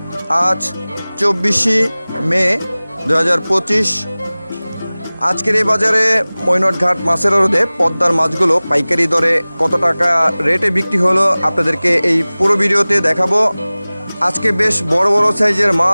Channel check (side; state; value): both; inverted; correlation -0.99